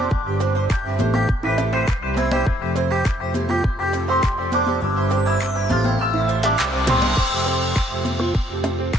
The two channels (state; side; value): normal; both; correlation 0.70